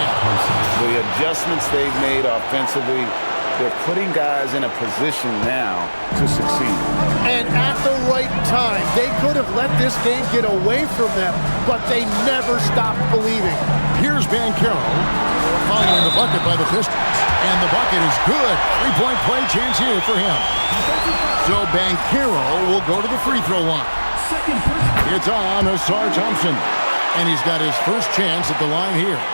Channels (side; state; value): both; inverted; correlation -1.00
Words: The adjustments they've made offensively, they're putting guys in a position now to succeed. And at the right time, they could have let this game get away from them, but they never stopped believing. Here's Banchero following the bucket by the Pistons. And the bucket is good. 3-point play chance here for him. So Banchero will go to the free throw line. It's on Asar Thompson. And he's got his first chance at the line here.